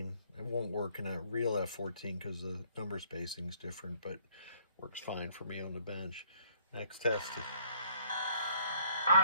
It won't work in a real F14 because the number spacing is different, but works fine for me on the bench. Next test.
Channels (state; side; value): inverted; both; correlation -0.63